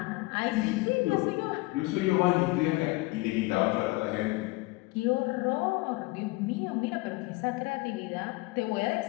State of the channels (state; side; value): quieter; right; 22.8 dB